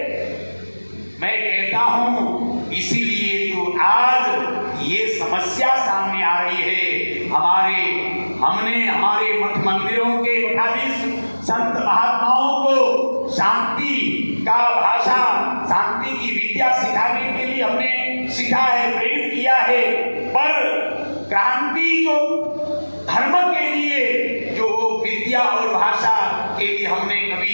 मैं कहता हूं इसीलिए तो आज ये समस्या सामने आ रही है। हमने हमारे मठ मंदिरों के मठाधीश संत महात्माओं को शांति का भाषा, शांति की विद्या सिखाने के लिए हमने सिखा है, प्रेरित किया है। पर क्रांति जो धर्म के लिए जो विद्या और भाषा के लिए हमने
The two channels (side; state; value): both; inverted; correlation -1.00